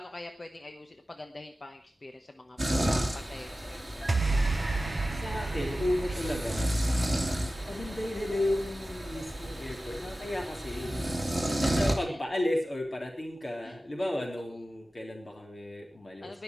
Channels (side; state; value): both; normal; correlation 0.95